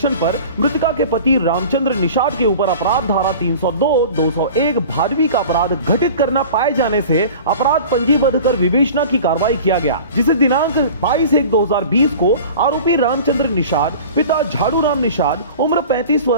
पर मृतिका के पति रामचंद्र निषाद के ऊपर अपराध धारा 302, 201 भादवी का अपराध घटित करना पाए जाने से अपराध पंजीबद्ध कर विवेचना की कार्रवाई किया गया, जिसे दिनांक 22/1/2020 को आरोपी रामचंद्र निषाद पिता झाड़ू राम निषाद उम्र 35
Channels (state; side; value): inverted; both; correlation -0.40